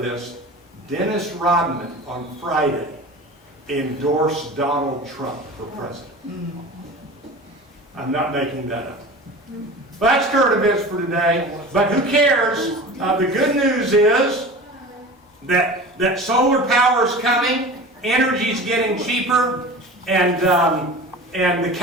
this, Dennis Rodman on Friday endorsed Donald Trump for president. I'm not making that up. Well, that's current events for today. But who cares? The good news is that solar power is coming, energy's getting cheaper, and the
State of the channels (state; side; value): normal; both; correlation 0.36